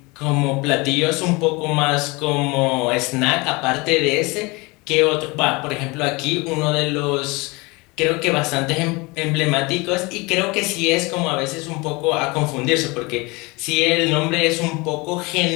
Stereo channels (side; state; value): right; quieter; 25.5 dB